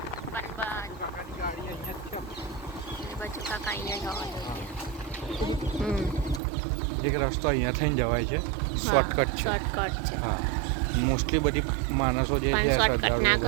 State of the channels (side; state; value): left; drops out; at 6.4 s